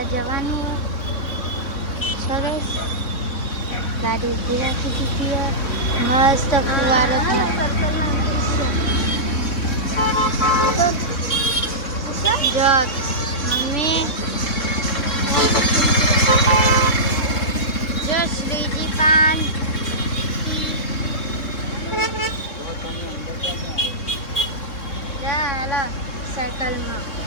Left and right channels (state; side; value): late; right; 3.6 ms